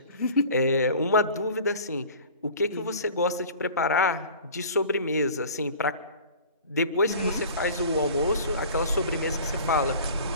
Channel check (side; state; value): both; inverted; correlation -0.43